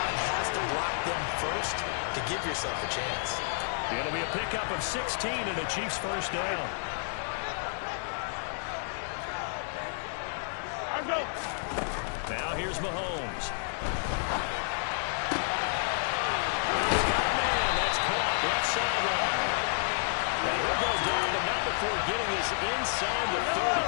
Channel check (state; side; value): silent; right; 57 dB below the other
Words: has to block them first to give yourself a chance. It'll be a pickup of 16 and a Chiefs first down. Now here's Mahomes. He's got a man. That's caught. Left sideline. And he'll go down, but not before getting this inside the